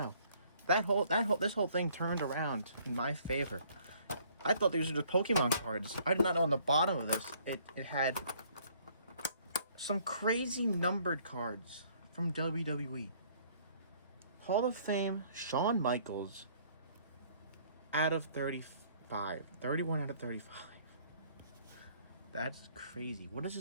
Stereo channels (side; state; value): both; inverted; correlation -0.61